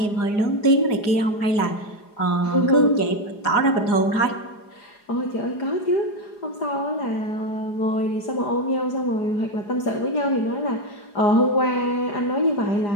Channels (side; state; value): right; late; 4.9 ms